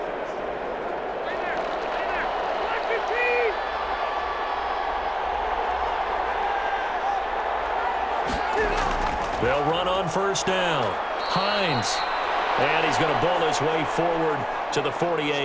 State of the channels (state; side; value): identical; both; correlation 1.00